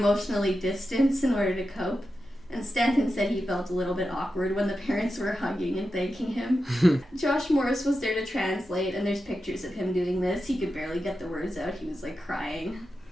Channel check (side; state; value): both; normal; correlation 0.90